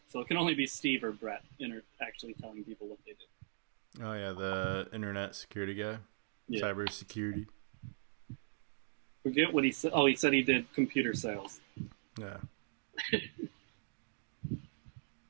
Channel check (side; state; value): left; silent; digital silence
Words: so it can only be Steve or Brett actually telling people what they did. Oh yeah, the internet security guy, Yeah. cyber security. Forget what he said. Oh, he said he did computer sales, Yeah.